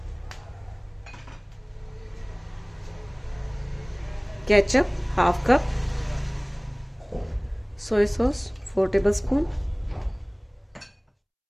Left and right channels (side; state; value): both; identical; correlation 1.00